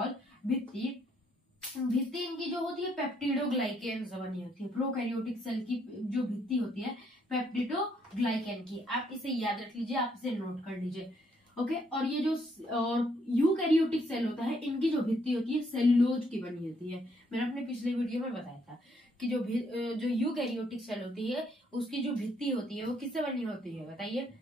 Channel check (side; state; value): both; normal; correlation 0.71